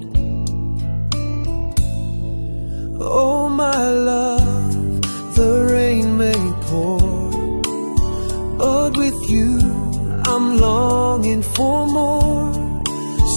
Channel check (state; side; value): inverted; both; correlation -1.00